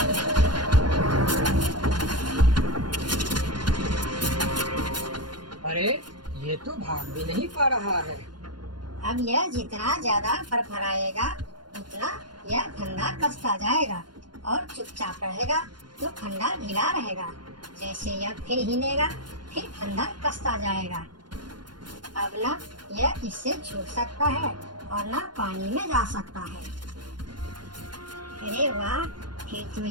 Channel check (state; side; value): late; left; 0.71 ms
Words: अरे ये तो भाग भी नहीं पा रहा है। अब यह जितना ज्यादा फरफराएगा उतना यह फंदा कसता जाएगा और चुपचाप रहेगा तो फंदा ढीला रहेगा। जैसे यह फिर हिलेगा फिर फंदा कसता जाएगा। अब ना यह इससे छूट सकता है और ना पानी में जा सकता है। अरे वाह, फिर तो